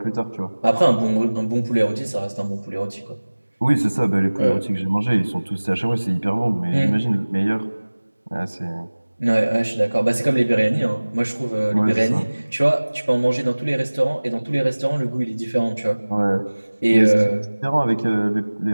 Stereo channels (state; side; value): inverted; both; correlation -1.00